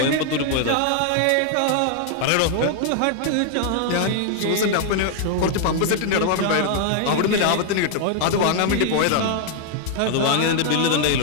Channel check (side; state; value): both; different; correlation 0.00